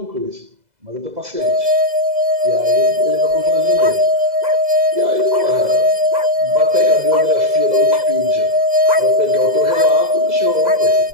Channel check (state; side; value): late; left; 2.0 ms